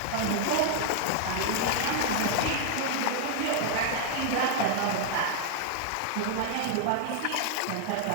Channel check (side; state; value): both; different; correlation 0.00